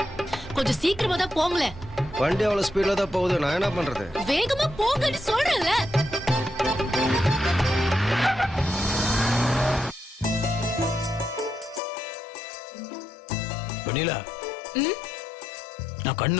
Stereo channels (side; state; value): right; drops out; at 11.8 s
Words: கொஞ்சம் சீக்கிரமா தான் போங்களேன். வண்டி அவ்வளவு ஸ்பீட்ல தான் போகுது, நான் என்ன பண்றது? வேகமா போங்கன்னு சொல்றேன்ல. வெண்ணிலா, நான்